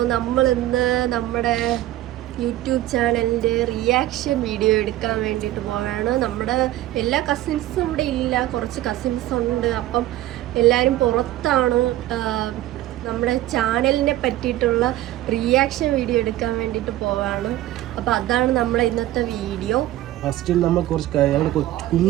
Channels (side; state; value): left; quieter; 14.8 dB